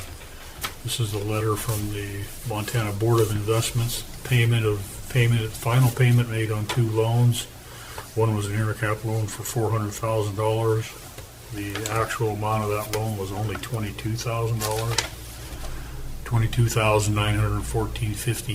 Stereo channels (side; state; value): both; identical; correlation 1.00